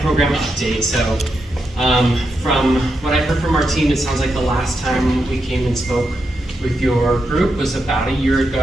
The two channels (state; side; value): normal; both; correlation 0.85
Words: program update. So from what I heard from our team, it sounds like the last time we came and spoke with your group was about a year